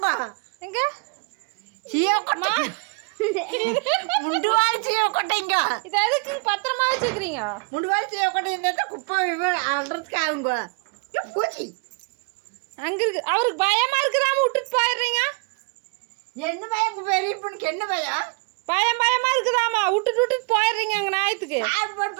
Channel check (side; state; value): left; quieter; 32.3 dB